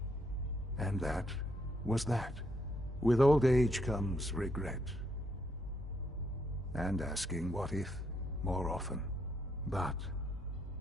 and that was that. With old age comes regret. And asking what if more often. But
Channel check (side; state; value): both; normal; correlation 0.75